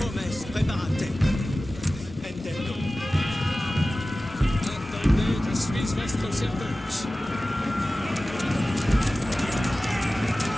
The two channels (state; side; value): normal; both; correlation 0.96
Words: Hommes, preparate. Intendo. Attendez, je suis votre service.